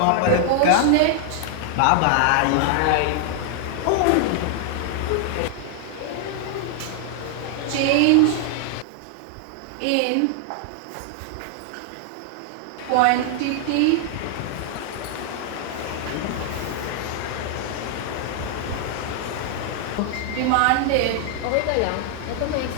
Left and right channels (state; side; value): different; both; correlation 0.00